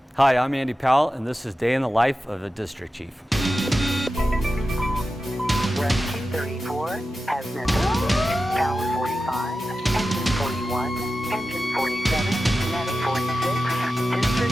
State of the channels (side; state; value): both; normal; correlation 0.93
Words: Hi, I'm Andy Powell, and this is Day in the Life of a District Chief. Rescue 34 has missing. Tower 45, engine 41, engine 47, medic 46,